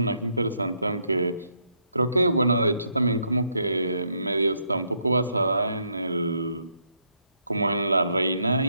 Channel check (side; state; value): both; inverted; correlation -0.75